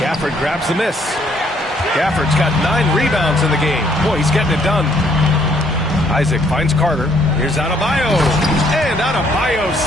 grabs the miss. Gafford's got 9 rebounds in the game. Boy, he's getting it done. Isaac finds Carter. Here's Adebayo. And Adebayo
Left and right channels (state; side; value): normal; both; correlation 0.66